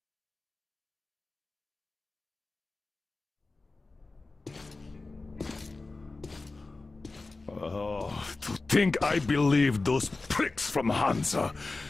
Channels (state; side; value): quieter; right; 3.5 dB